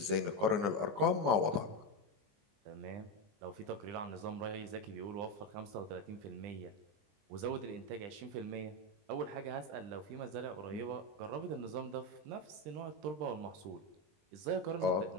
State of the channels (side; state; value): left; late; 20 ms